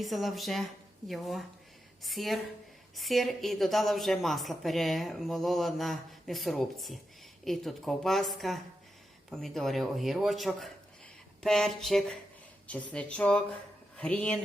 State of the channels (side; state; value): both; normal; correlation 0.87